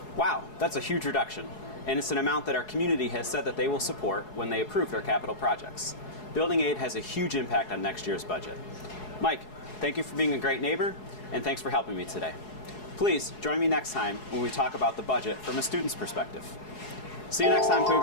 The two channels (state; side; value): late; right; 4.7 ms